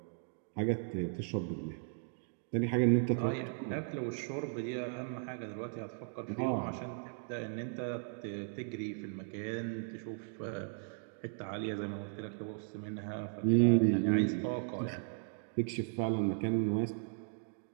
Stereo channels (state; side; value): silent; left; 53 dB below the other